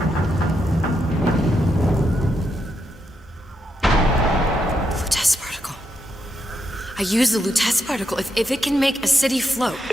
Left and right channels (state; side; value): normal; both; correlation 0.82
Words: Lutece particle. I use the Lutece particle. If it can make a city float.